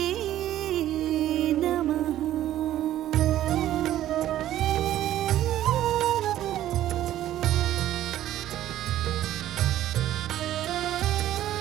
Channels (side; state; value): left; quieter; 12.9 dB